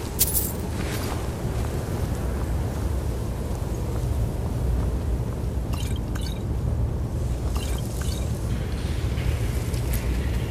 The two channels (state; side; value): identical; both; correlation 1.00